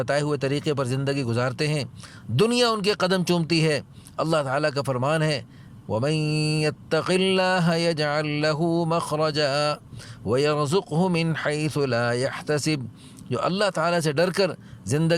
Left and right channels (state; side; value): identical; both; correlation 1.00